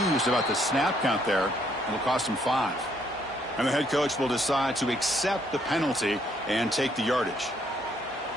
about the snap count there. It'll cost them 5. And the head coach will decide to accept the penalty and take the yardage.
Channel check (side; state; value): both; normal; correlation 0.69